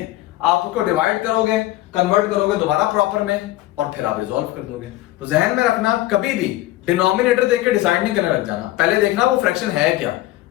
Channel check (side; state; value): right; quieter; 16.6 dB